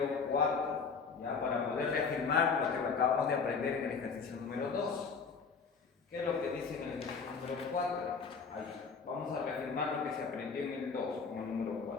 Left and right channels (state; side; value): quieter; right; 5.3 dB